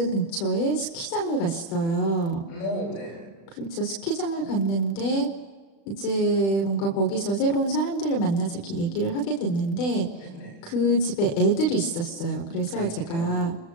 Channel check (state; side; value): late; right; 36 ms